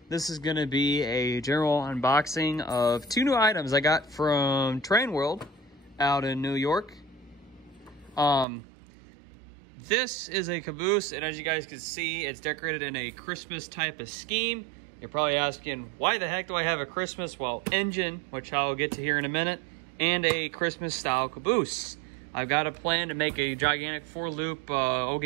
This is going to be a general unboxing of two new items I got from Train World out in New York. This is a Caboose, and as you guys can see, it's decorated in a Christmas type of scheme. You're probably asking, why the heck do I have a Christmas, well, engine, which I'll get to here in a minute, and a Christmas style Caboose. I've got a plan to make a gigantic 4-loop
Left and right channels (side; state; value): left; drops out; at 8.5 s